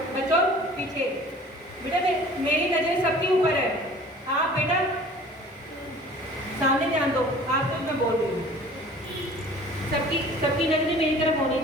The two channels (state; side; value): normal; both; correlation 0.47